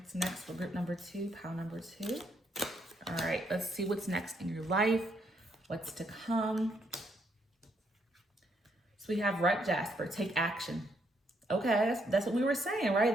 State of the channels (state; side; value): normal; both; correlation 0.74